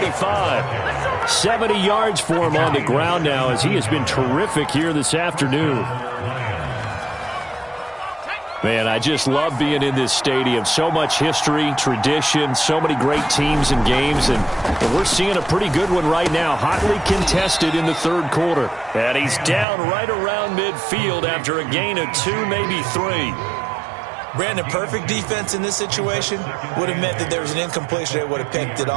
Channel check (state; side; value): drops out; left; at 19.7 s